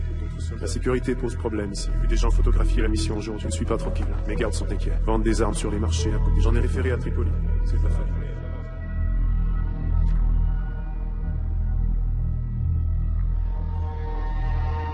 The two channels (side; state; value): both; identical; correlation 1.00